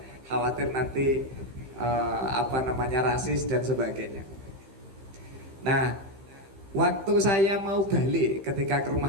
khawatir nanti rasis dan sebagainya. Nah, waktu saya mau balik ketika ke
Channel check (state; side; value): late; left; 15 ms